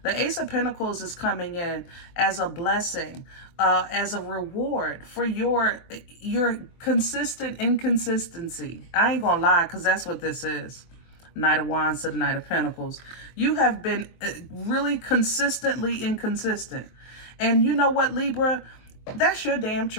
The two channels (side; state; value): right; late; 23 ms